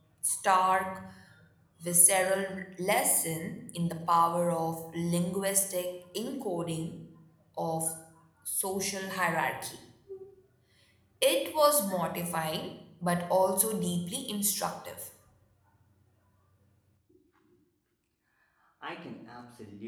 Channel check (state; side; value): identical; both; correlation 1.00